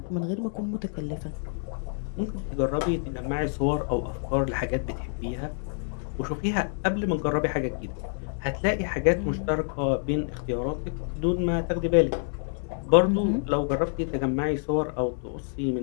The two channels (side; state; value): right; silent; 60 dB below the other